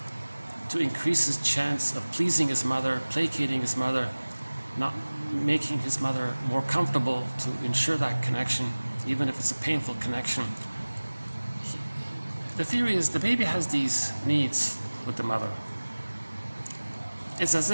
to increase his chance of pleasing his mother, placating his mother, not making his mother more comfortable, to ensure that connection, even if it's a painful connection. The theory is the baby has these needs with the mother. It's as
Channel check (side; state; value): both; inverted; correlation -1.00